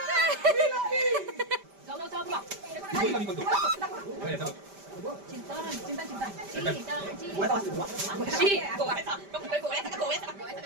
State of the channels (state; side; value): late; left; 5.1 ms